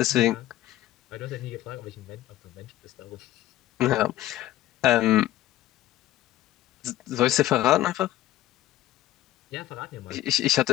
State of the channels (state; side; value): quieter; right; 14.5 dB